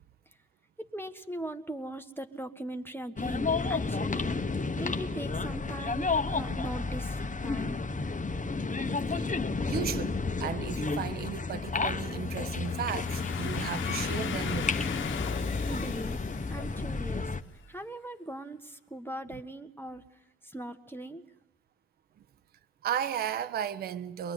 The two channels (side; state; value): both; normal; correlation 0.44